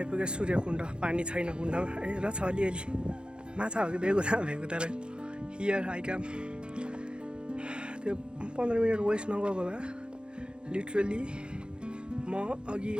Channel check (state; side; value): late; left; 0.052 ms